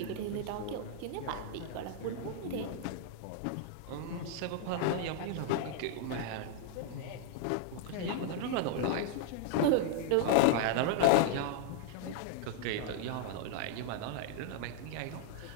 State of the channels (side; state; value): both; different; correlation -0.01